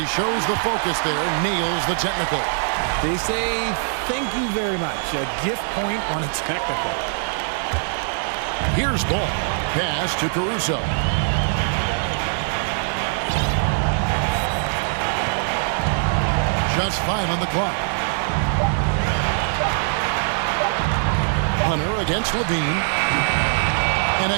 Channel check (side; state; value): left; silent; 61 dB below the other